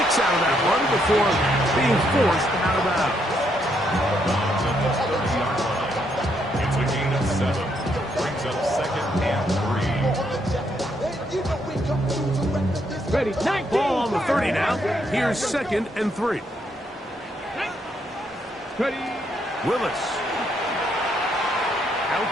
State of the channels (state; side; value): normal; both; correlation 0.75